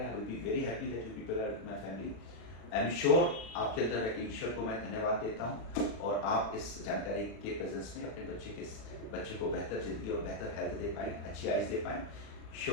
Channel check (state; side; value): late; right; 37 ms